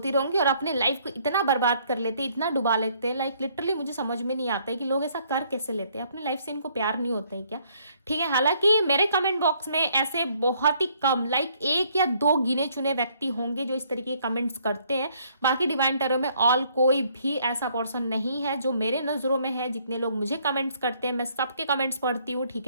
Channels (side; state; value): both; inverted; correlation -0.66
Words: रहूँगी, और अपने लाइफ को इतना बर्बाद कर लेते हैं, इतना डुबा लेते हैं, लाइक लिटरली मुझे समझ में नहीं आता है कि लोग ऐसा कर कैसे लेते हैं। अपनी लाइफ से इनको प्यार नहीं होता है क्या, ठीक है। हालांकि मेरे कमेंट बॉक्स में ऐसे बहुत ही कम, लाइक 1 या 2 गिने चुने व्यक्ति होंगे जो इस तरीके के कमेंट्स करते हैं। बाकी डिवाइन टैरो में ऑल कोई भी ऐसा पर्सन नहीं है जो मेरे नज़रों में है। जितने लोग मुझे कमेंट्स करते हैं, मैं सबके कमेंट्स पढ़ती हूँ, ठीक